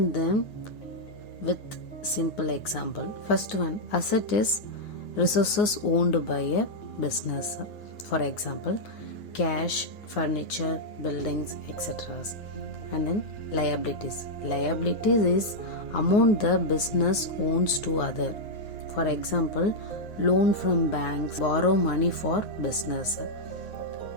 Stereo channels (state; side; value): late; right; 9.6 ms